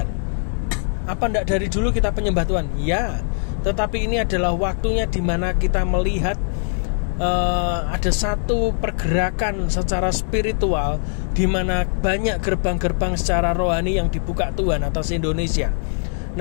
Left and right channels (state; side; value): silent; right; digital silence